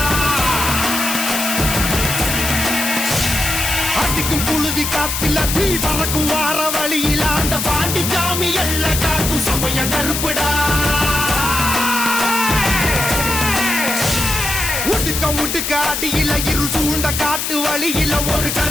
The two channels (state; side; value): noise; left; hiss, 2 dB below the sound